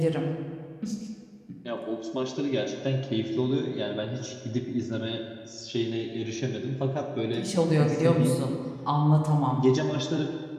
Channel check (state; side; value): identical; both; correlation 1.00